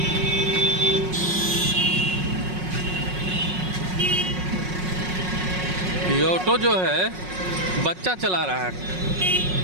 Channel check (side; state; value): left; late; 5.5 ms